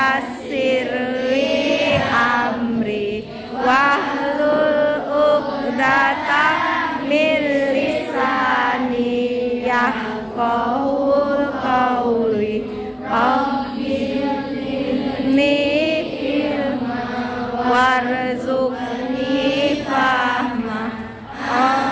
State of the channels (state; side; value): identical; both; correlation 1.00